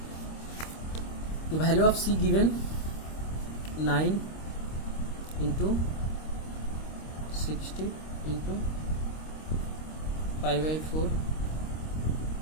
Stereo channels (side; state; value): right; late; 26 ms